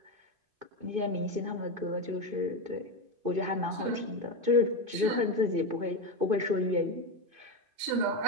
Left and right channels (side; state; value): left; late; 2.5 ms